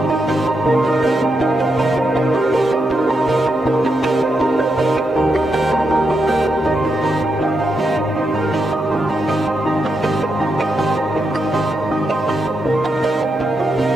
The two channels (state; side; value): normal; both; correlation 0.84